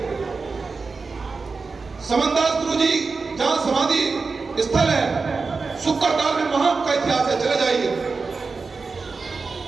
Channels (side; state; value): left; quieter; 4.4 dB